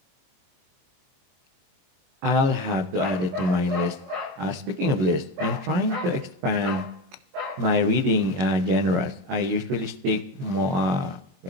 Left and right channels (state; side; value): late; left; 22 ms